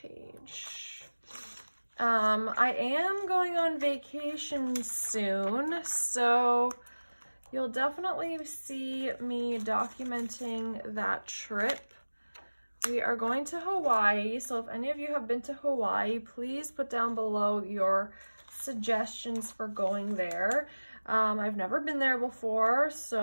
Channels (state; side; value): inverted; both; correlation -1.00